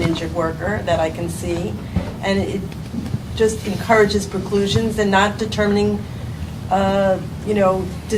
injured worker that I can see. And it just encourages preclusions and not determining,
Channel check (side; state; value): both; identical; correlation 1.00